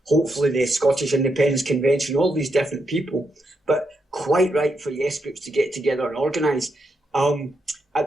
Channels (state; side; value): normal; both; correlation 0.82